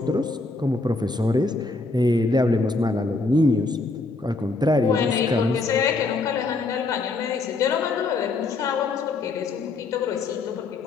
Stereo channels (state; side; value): quieter; right; 3.5 dB